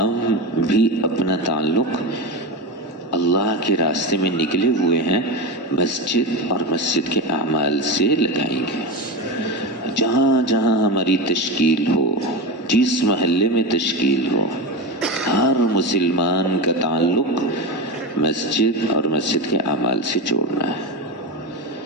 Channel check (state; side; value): normal; both; correlation 0.19